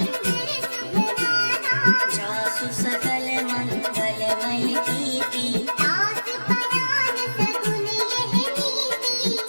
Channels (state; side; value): inverted; both; correlation -1.00